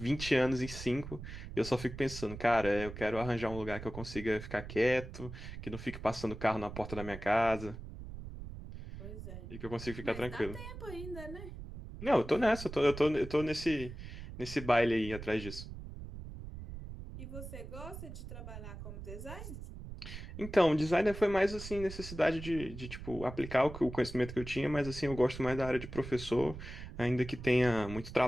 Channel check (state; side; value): noise; right; rumble, 11 dB below the sound